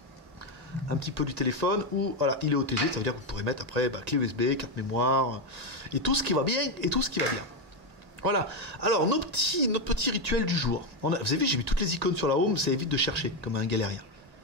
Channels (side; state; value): left; late; 1.9 ms